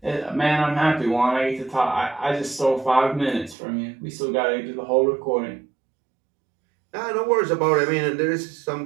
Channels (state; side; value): drops out; left; at 3.6 s